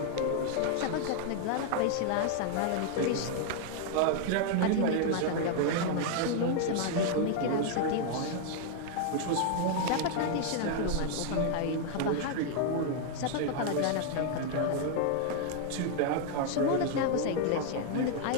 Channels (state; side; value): different; both; correlation 0.00